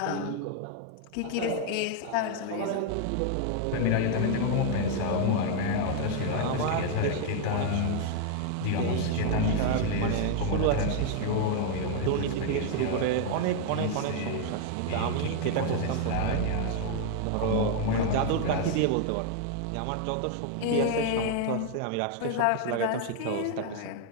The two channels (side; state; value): both; different; correlation 0.00